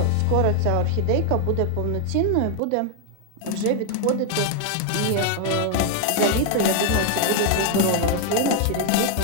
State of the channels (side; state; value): both; different; correlation 0.00